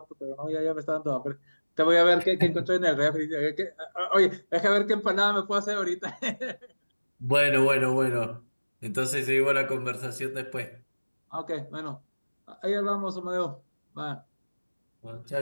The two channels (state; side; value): inverted; both; correlation -1.00